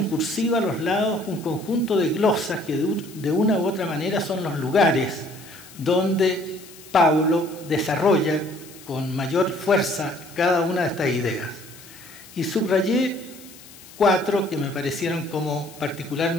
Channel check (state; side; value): noise; left; hiss, 20 dB below the sound